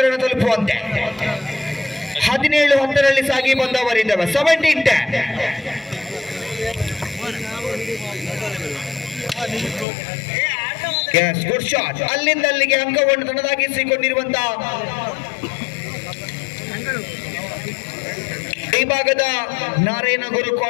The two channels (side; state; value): right; drops out; at 9.9 s